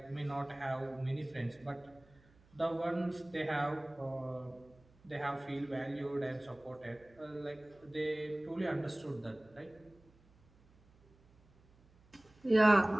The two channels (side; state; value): right; noise; hum, 29 dB below the sound